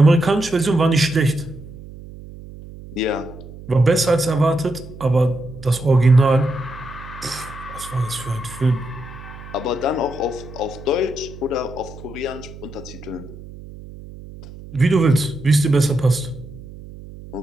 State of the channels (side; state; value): right; noise; hum, 16 dB below the sound